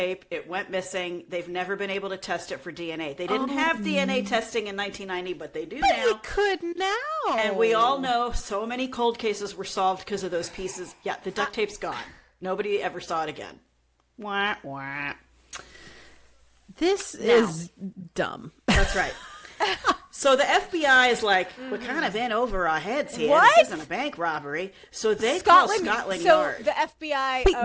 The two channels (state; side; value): identical; both; correlation 1.00